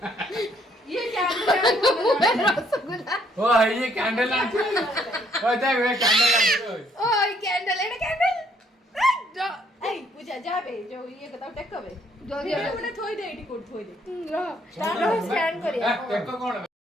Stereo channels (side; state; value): both; normal; correlation 0.67